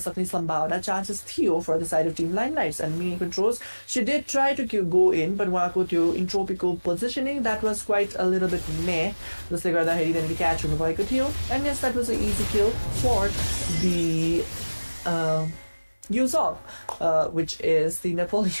Sambhava chances Theo for the side of Team Limelights and mini controls. She did try to go in, but Wako to intropical positioning, that was quite a little bit meh. Just like that, then the catch on the Theo. And yes, that was an easy kill for the Yuzong, which is the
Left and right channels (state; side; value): inverted; both; correlation -1.00